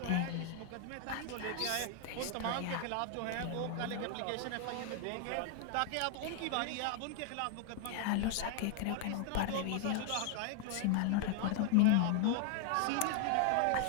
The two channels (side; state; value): both; different; correlation 0.00